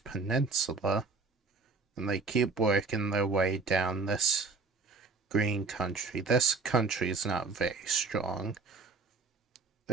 and they keep working their way down this green country. This country is not very strong,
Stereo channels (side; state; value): left; quieter; 4.2 dB